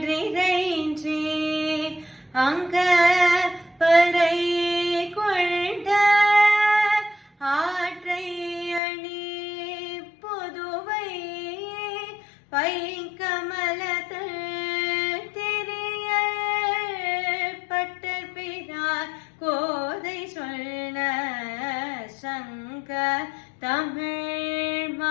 அங்க பறை கொண்ட ஆற்றை அணி பொதுவை பைங்கமலத்தள் திரிய பட்டர் பிரார் கோதை சொன்ன சங்க தமிழ்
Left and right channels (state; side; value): drops out; right; at 8.8 s